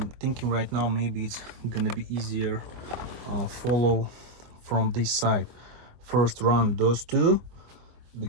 thinking right now maybe it's gonna be easier follow from this side. First run those two,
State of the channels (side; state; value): left; late; 24 ms